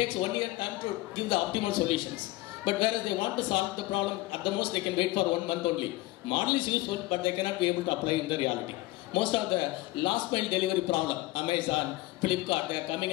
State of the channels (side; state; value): right; quieter; 18.7 dB